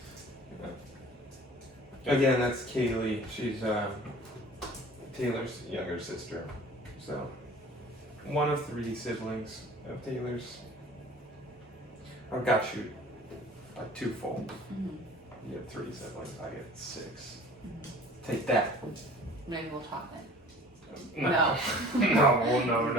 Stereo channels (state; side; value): normal; both; correlation 0.46